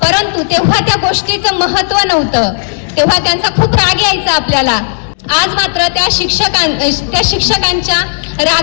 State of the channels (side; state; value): right; silent; digital silence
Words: परंतु तेव्हा त्या गोष्टीचं महत्त्व नव्हतं. तेव्हा त्यांचा खूप राग यायचा आपल्याला. आज मात्र त्या शिक्षकांच्या